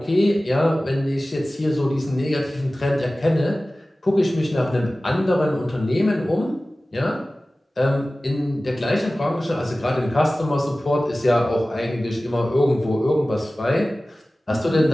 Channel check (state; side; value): normal; both; correlation 0.97